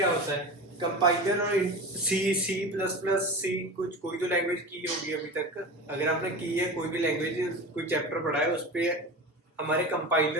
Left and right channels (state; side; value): normal; both; correlation 0.29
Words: होता है? कंपाइलर और सी प्लस प्लस सी, कुछ कोई तो लैंग्वेज की होगी अभी तक। अगर आपने की है कोई भी लैंग्वेज, कोई चैप्टर पढ़ा है, उस पे हमारे